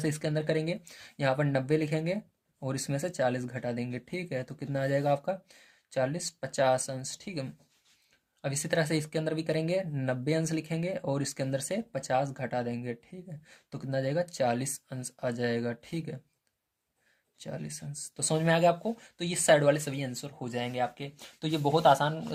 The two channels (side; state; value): both; identical; correlation 1.00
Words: इसके अंदर करेंगे, यहाँ पर 90 लिखेंगे और इसमें से 40 घटा देंगे, ठीक है, तो कितना आ जाएगा आपका 40, 50 अंश, ठीक है। अब इसी तरह से इसके अंदर भी करेंगे, 90 अंश लिखेंगे और इसके अंदर से 50 घटा देंगे, ठीक है, तो कितना आ जाएगा, 40 अंश आ जाएगा, ठीक है, 40 अंश। तो समझ में आ गया आपको। तो ये साइड वाले सभी आंसर हो जाएंगे आपके। तो ये बहुत आसान